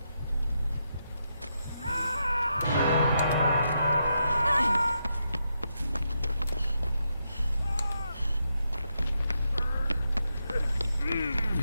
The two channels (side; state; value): both; inverted; correlation -0.83